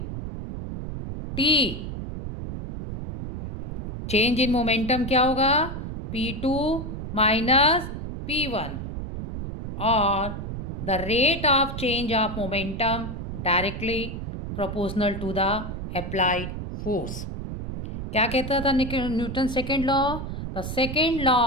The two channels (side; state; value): right; noise; rumble, 7 dB below the sound